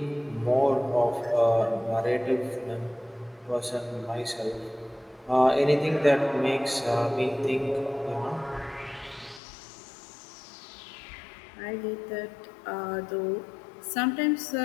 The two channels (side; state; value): right; drops out; at 9.4 s